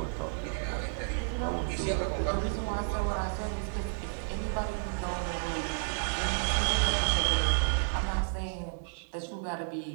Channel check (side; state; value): left; silent; 56 dB below the other